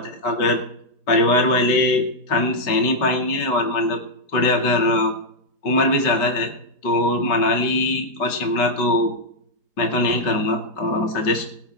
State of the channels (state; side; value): late; right; 5.3 ms